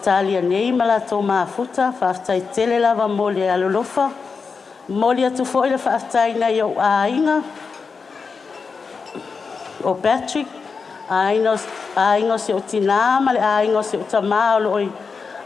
nei ma lato maafuta, whaafitai tele lava mo le alolofa. Mori atu fo le whaafitai nei o ainga, o Patrick, ainga se o tina ma le ainga se o tama o loi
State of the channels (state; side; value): quieter; right; 5.1 dB